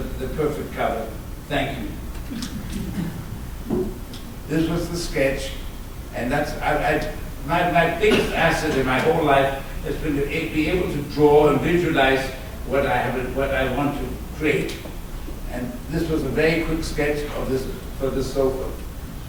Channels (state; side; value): identical; both; correlation 1.00